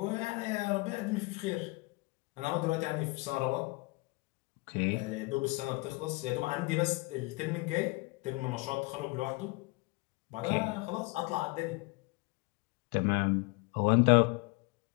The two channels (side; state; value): right; quieter; 25.8 dB